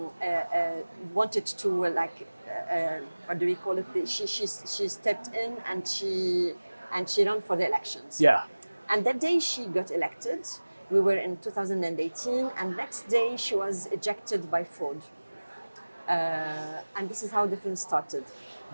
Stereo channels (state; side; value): inverted; both; correlation -1.00